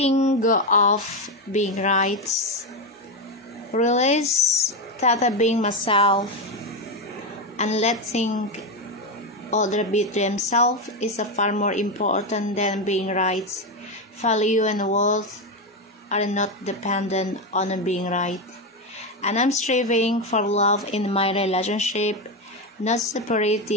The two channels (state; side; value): normal; both; correlation 0.11